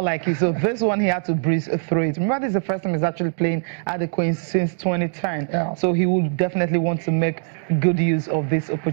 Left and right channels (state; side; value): silent; left; 63 dB below the other